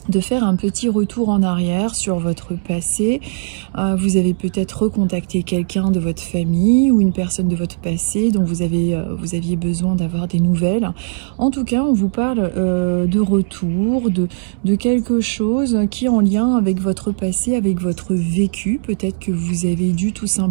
faire un petit retour en arrière sur votre passé. Vous avez peut-être recontacté quelqu'un de votre famille ou une personne de votre passé dont vous aviez besoin d'avoir des nouvelles. En tout cas, on vous parle de retour, de quelque chose qui est en lien avec votre passé, avec votre vécu. Peut-être que vous avez dû tout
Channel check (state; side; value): silent; left; 67 dB below the other